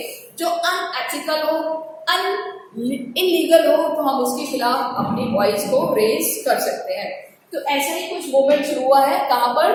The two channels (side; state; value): both; identical; correlation 1.00